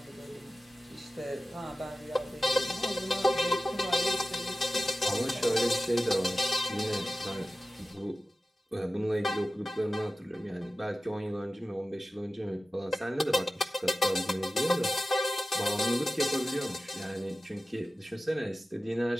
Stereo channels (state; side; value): normal; both; correlation 0.95